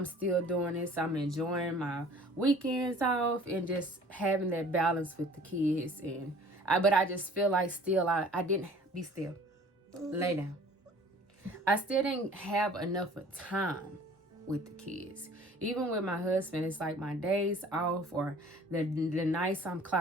still doing this. I'm enjoying my weekends off and just having that balance with the kids. But I just feel like still I didn't. Be still. Lay down. I still didn't have enough of time with the kids. Even with my husband, it's like my days off or the nights I'm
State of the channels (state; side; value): normal; both; correlation 0.50